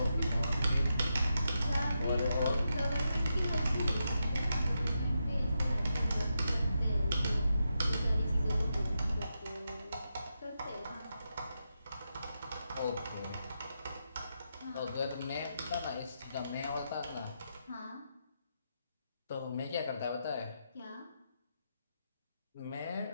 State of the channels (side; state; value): both; inverted; correlation -0.85